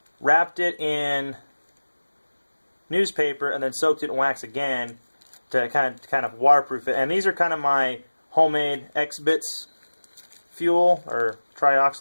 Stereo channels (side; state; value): both; inverted; correlation -1.00